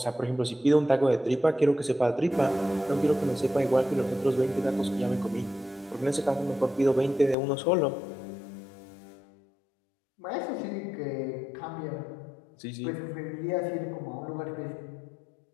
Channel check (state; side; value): drops out; right; at 7.4 s